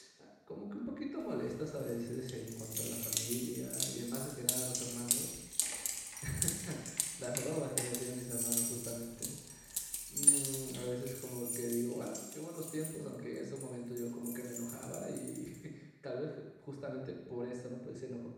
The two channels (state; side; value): identical; both; correlation 1.00